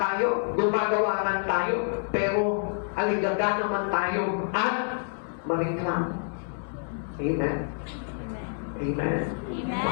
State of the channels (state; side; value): silent; right; 58 dB below the other